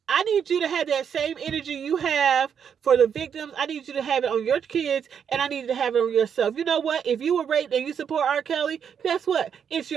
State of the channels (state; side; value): quieter; left; 7.7 dB